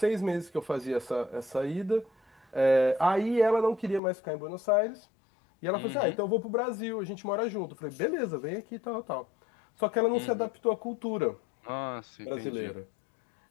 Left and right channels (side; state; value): right; drops out; at 4.0 s